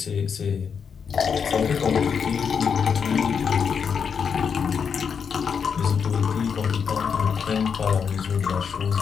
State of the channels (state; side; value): quieter; right; 6.6 dB